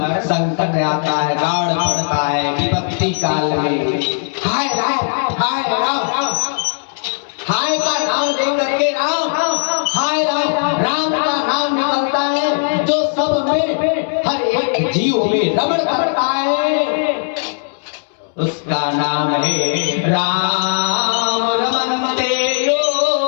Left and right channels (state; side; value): silent; right; 68 dB below the other